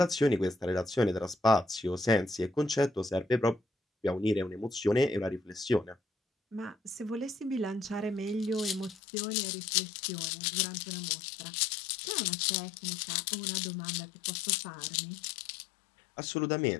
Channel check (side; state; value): right; drops out; at 9.0 s